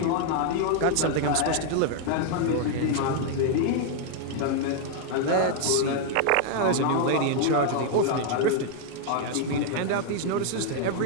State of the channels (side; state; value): both; different; correlation 0.00